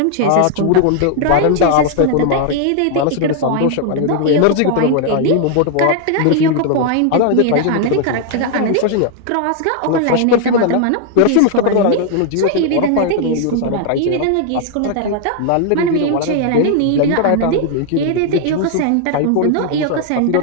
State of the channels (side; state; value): both; different; correlation 0.00